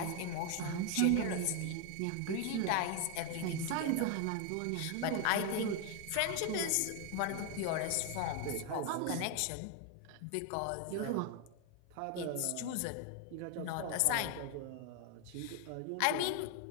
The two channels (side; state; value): both; different; correlation 0.01